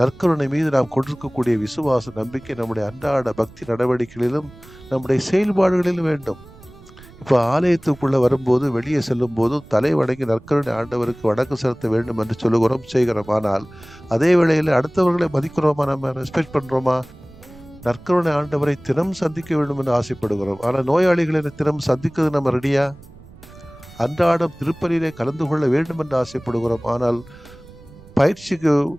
மீது நாம் கொண்டிருக்கக்கூடிய விசுவாச நம்பிக்கை நம்முடைய அன்றாட பக்தி நடவடிக்கைகளிலும் நம்முடைய செயல்பாடுகளிலும் வேண்டும். இப்போ ஆலயத்துக்குள்ள வரும்போது, வெளியே செல்லும் போதும் தலை வணங்கி நற்கருணை ஆண்டவருக்கு வணக்கம் செலுத்த வேண்டும் என்று சொல்லுகிறோம், செய்கிறோம். ஆனால் அதே வேளையில் அடுத்தவர்களை மதிக்கிறோமா? நம்ம ரெஸ்பெக்ட் பண்றோமா? நற்கருணை ஆண்டவரை தினம் சந்திக்க வேண்டும் என்று ஆசைப்படுகிறோம். ஆனால் நோயாளிகளை தினம் சந்திக்கிறது நம்ம ரெடியா? அன்றாடம் திருப்பலியிலே கலந்து கொள்ள வேண்டும் என்று ஆசைப்படுகிறோம். ஆனால் பயிற்சிக்கு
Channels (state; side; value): noise; right; rumble, 21 dB below the sound